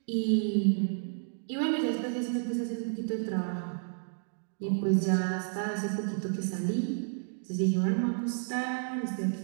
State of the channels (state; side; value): silent; left; digital silence